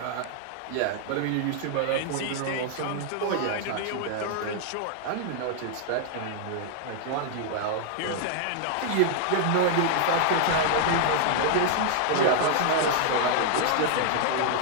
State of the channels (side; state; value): both; different; correlation 0.00